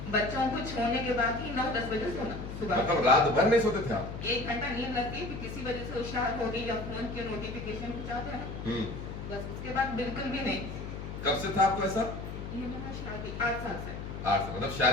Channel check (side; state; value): left; noise; hum, 8 dB below the sound